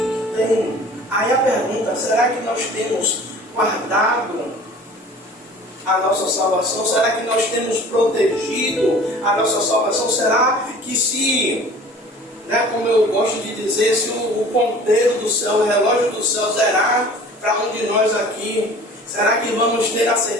tem. Aí a pergunta, será que nós temos guardado a nossa salvação? Será que nós temos protegido a nossa salvação? Será que se, como eu gosto de dizer, se o ponteiro do céu, o relógio do céu zerar para um de nós aqui, será que vamos ter a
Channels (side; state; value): both; normal; correlation 0.45